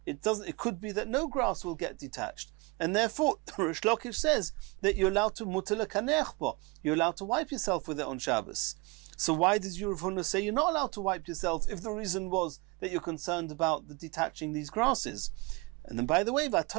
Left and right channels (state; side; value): quieter; left; 26.1 dB